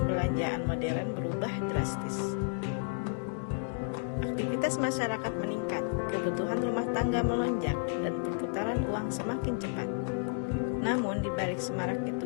modern berubah drastis. Aktivitas masyarakat meningkat, kebutuhan rumah tangga melonjak, dan perputaran uang semakin cepat. Namun di balik semarak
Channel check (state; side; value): silent; right; digital silence